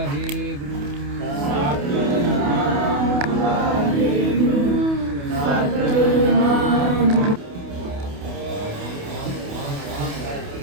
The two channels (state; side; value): late; left; 28 ms